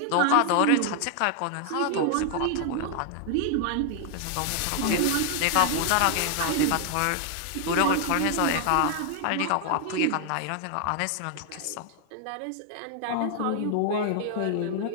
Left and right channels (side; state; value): both; different; correlation 0.00